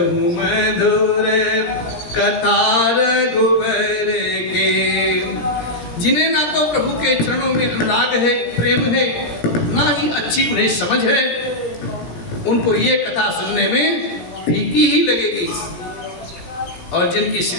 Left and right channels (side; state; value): right; late; 18 ms